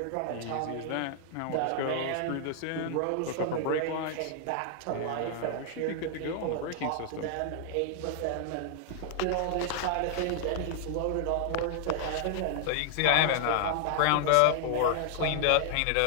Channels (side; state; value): both; different; correlation -0.01